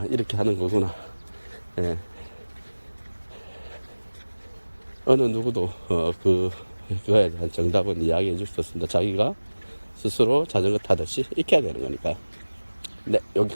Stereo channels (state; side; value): inverted; both; correlation -1.00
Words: 이렇게 하는 거구나. 예, 어느 누구도 그거에 대한 정답은 이야기해 줄 수 없습니다. 자기가 스스로 자전거 타듯이 익혀야 되는 거니까요. 네,